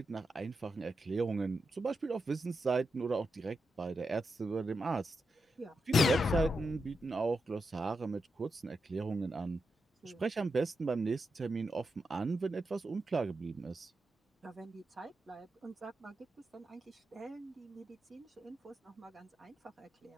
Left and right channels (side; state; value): both; normal; correlation 0.87